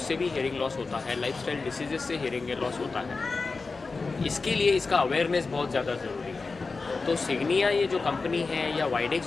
भी हियरिंग लॉस होता है, लाइफस्टाइल डिसीजेस से हियरिंग लॉस होता है। इसके लिए इसका अवेयरनेस बहुत ज़्यादा ज़रूरी है। तो सिग्निया ये जो कंपनी है या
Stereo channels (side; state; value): right; quieter; 4.1 dB